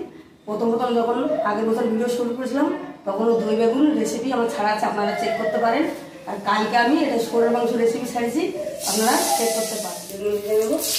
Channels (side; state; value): both; identical; correlation 1.00